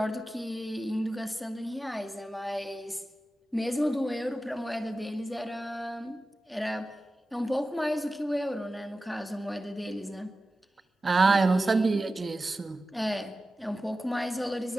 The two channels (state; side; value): normal; both; correlation 0.94